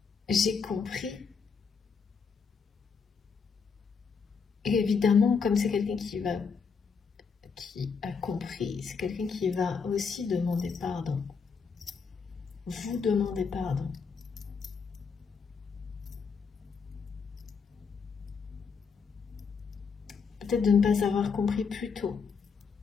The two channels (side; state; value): right; quieter; 5.6 dB